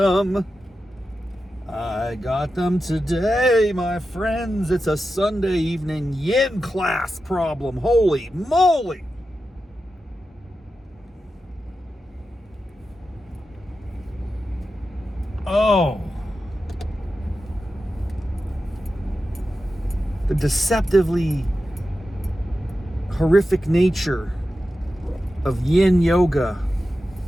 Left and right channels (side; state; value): both; normal; correlation 0.91